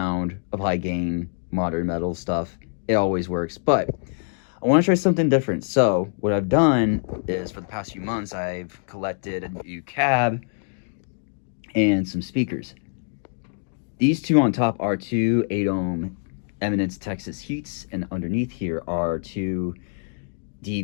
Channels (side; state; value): right; silent; digital silence